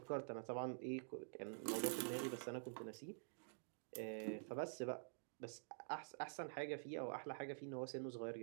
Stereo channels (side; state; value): left; silent; digital silence